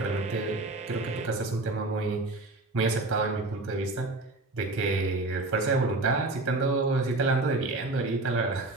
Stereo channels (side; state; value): left; quieter; 3.0 dB